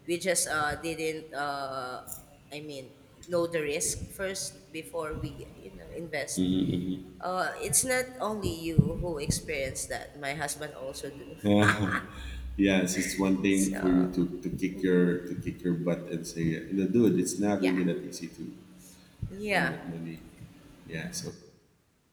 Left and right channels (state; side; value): identical; both; correlation 1.00